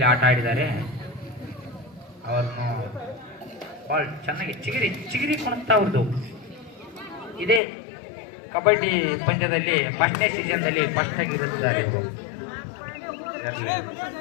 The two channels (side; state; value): right; drops out; at 7.6 s